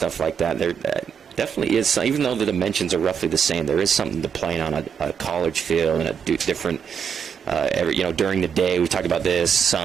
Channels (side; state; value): left; quieter; 7.3 dB